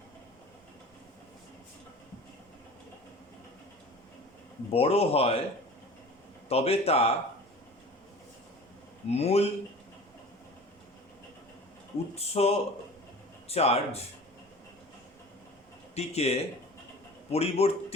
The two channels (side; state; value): both; normal; correlation 0.40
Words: বড় হয় তবে তা মূল উৎস চার্জটিকে